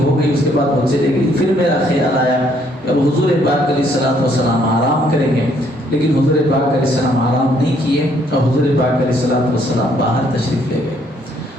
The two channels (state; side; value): normal; both; correlation 0.67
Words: ہو گئی، اس کے بعد وہ چلے گئی۔ پھر میرا خیال آیا کہ اب حضور پاک علیہ السلام آرام کریں گے، لیکن حضور پاک علیہ السلام آرام نہیں کیے اور حضور پاک علیہ السلام باہر تشریف لے گئے۔